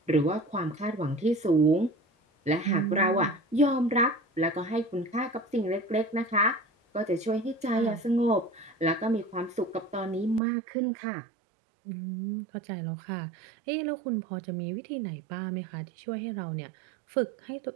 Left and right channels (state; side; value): drops out; left; at 10.4 s